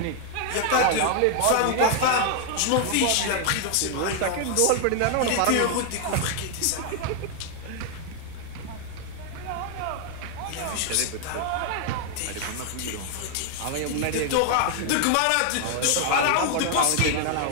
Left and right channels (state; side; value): different; both; correlation 0.00